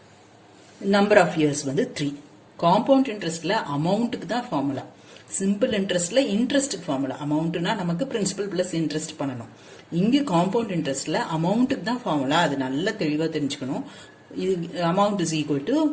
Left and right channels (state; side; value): identical; both; correlation 1.00